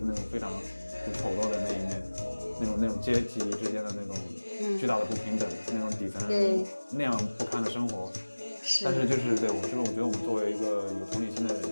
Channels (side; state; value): both; inverted; correlation -1.00